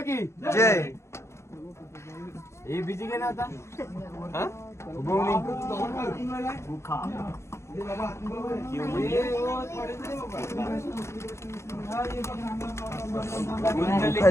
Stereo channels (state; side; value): late; right; 0.13 ms